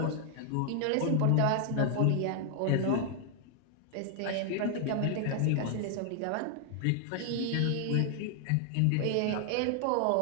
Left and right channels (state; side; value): different; both; correlation 0.00